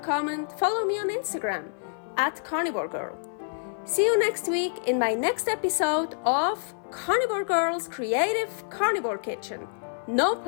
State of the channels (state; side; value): silent; right; 56 dB below the other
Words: comment, follow me on Instagram @karnivorgirl. See you next week in my next episode of Carnivore Girl's Creative Carnivore Kitchen. No